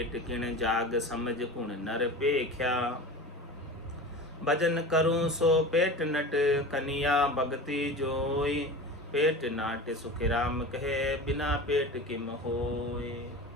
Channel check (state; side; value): normal; both; correlation 0.33